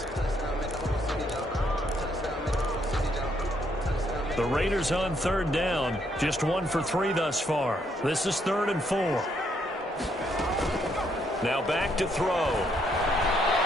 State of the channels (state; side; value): normal; both; correlation 0.72